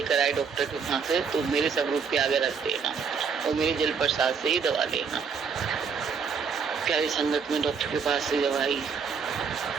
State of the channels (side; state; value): left; quieter; 5.9 dB